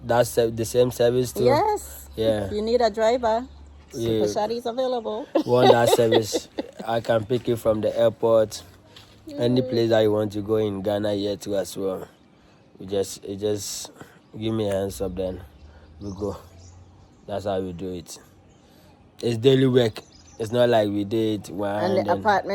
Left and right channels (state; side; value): identical; both; correlation 1.00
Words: same service too. Yes. Yeah. If you need a driver, Super Shady is available. Want that service? I can pick you from the airport, any place that you want to go in Ghana here too as well. You just give me a hands up, then we go. That's how we do it. It's daily work. It's not like we did one. And the